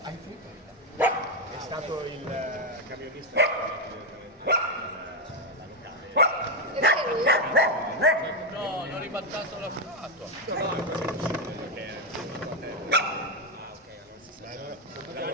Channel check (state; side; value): normal; both; correlation 0.05